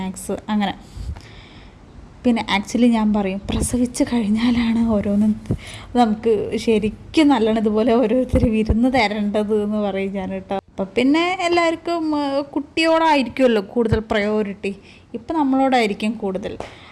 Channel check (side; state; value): both; identical; correlation 1.00